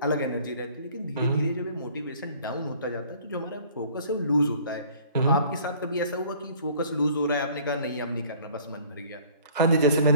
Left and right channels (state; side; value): inverted; both; correlation -0.53